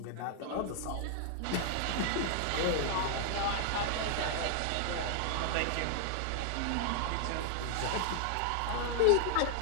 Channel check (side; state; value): both; different; correlation 0.00